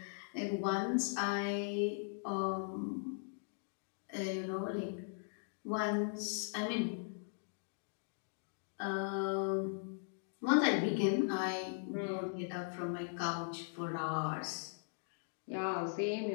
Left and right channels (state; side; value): silent; right; digital silence